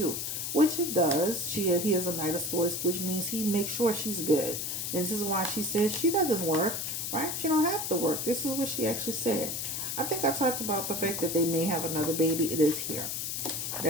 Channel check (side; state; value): left; noise; hiss, 3 dB below the sound